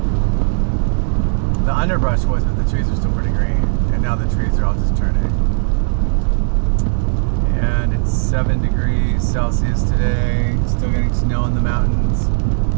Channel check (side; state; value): left; silent; digital silence